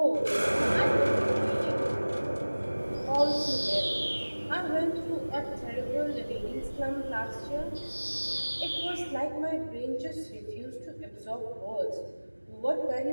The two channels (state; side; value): inverted; both; correlation -1.00